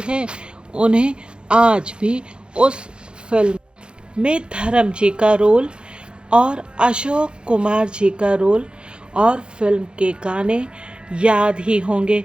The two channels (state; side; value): late; left; 0.052 ms